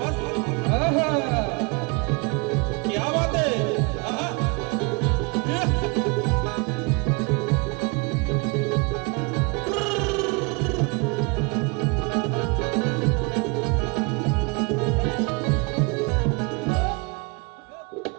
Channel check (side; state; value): left; quieter; 30.3 dB